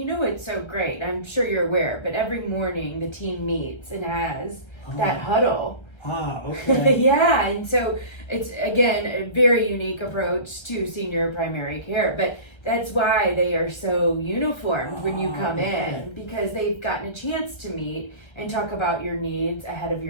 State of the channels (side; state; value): right; late; 1.3 ms